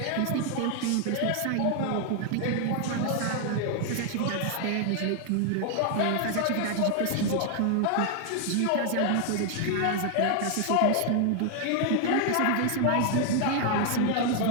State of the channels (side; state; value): both; different; correlation 0.00